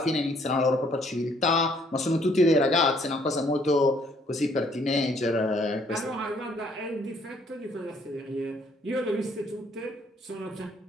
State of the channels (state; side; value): normal; both; correlation 0.64